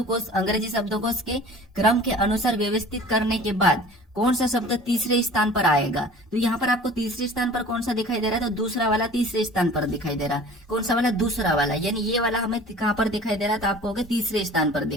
अंग्रेजी शब्दकोश के क्रम के अनुसार व्यवस्थित करने के बाद कौन सा शब्द तीसरे स्थान पर आएगा। तो यहाँ पर आपको तीसरे स्थान पर कौन सा दिखाई दे रहा है, तो दूसरा वाला तीसरे स्थान पर दिखाई दे रहा है। कौन सा वाला, दूसरा वाला, यानी ये वाला हमें कहाँ पर दिखाई दे रहा है, तो आप कहोगे तीसरे स्थान पर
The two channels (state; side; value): normal; both; correlation 0.44